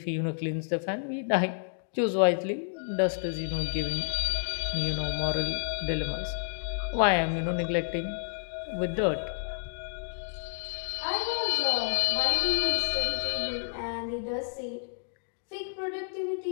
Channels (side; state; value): right; silent; digital silence